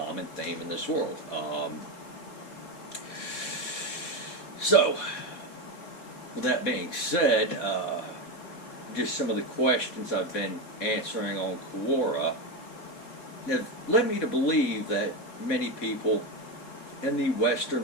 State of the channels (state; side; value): late; right; 4.0 ms